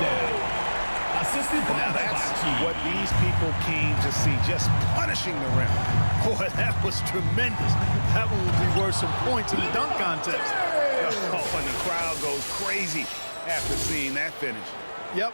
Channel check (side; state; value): both; inverted; correlation -1.00